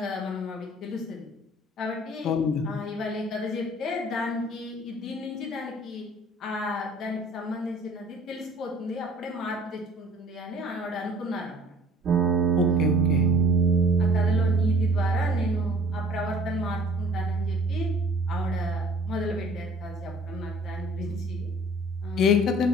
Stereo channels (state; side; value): normal; both; correlation 0.51